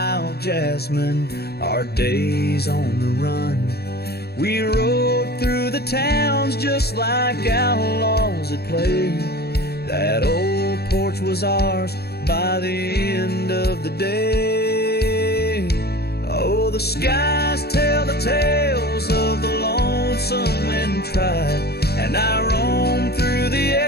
jasmine, our days on the run. We rode through the towns just like outlaws at play. That old porch was ours by the end of the day. Oh, the skies tell the tales of the lonesome and tried, and I roam through the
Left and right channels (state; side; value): late; right; 0.47 ms